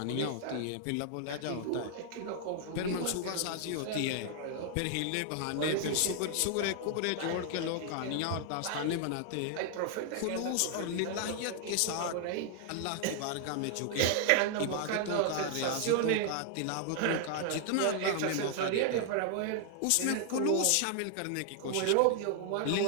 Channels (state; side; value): different; both; correlation 0.00